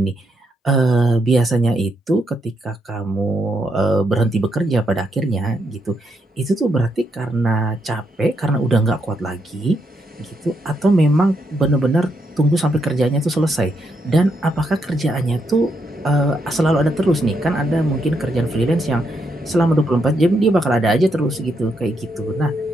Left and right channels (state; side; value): normal; both; correlation 0.79